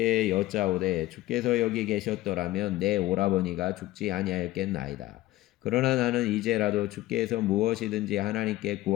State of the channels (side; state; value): right; quieter; 16.5 dB